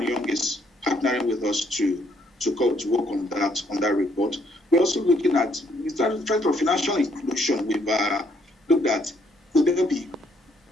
is partnering with us to work on that report. We're also looking at trying for financial inclusion. We've looked at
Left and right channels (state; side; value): normal; both; correlation 0.69